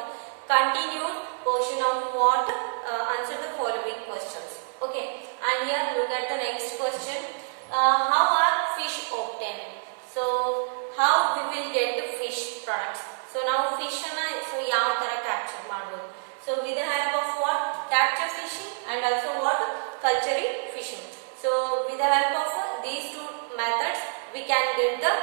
continued portion of what answer the following questions. Okay, and here look at the next question. How are fish obtained? So how we will get the fish products? So now fish so ಯಾವ ತರ capture ಮಾಡಬಹುದು? So with the help of what? Capture fishing and also what? Culturing fishing. So with the help of these two methods we can get the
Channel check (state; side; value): silent; left; digital silence